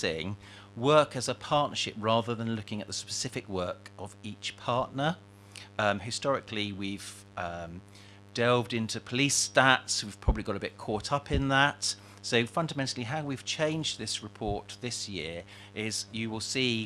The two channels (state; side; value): identical; both; correlation 1.00